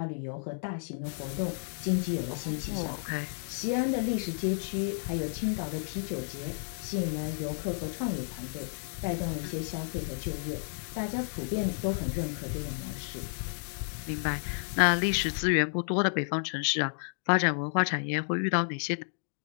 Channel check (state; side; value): silent; right; digital silence